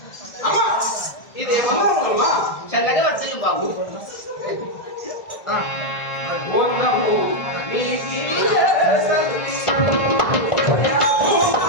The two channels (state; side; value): late; right; 1.6 ms